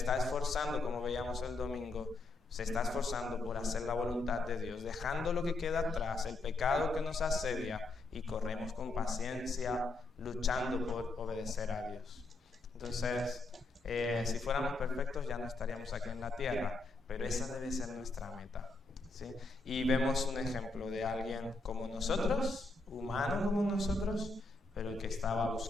esforzando, como veíamos el domingo, se está esforzando por hacer la voluntad de Dios, dejando lo que queda atrás, el pecado que nos asedia, y corremos con paciencia, luchando por obedecer a Dios. Entonces, si fuéramos perfectos ya no estaríamos aquí en la tierra, pero esa debe ser nuestra meta. ¿Sí? Y vemos un ejemplo de alguien como nosotros, humano como nosotros, pero que estaba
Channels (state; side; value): quieter; right; 3.1 dB